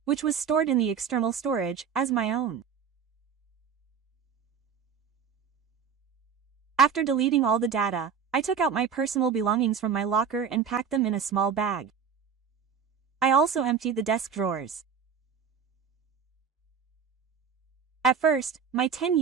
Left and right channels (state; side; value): quieter; left; 6.8 dB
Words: which was stored in the external storage, as my own. After deleting all the data, I took out my personal belongings from my locker and packed them in a small bag. I also emptied the desk drawers. At first, my 10